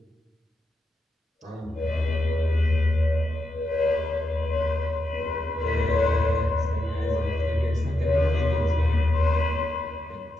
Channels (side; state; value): both; normal; correlation 0.85